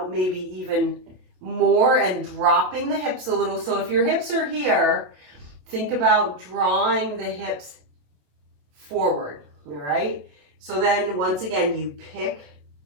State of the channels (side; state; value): left; late; 27 ms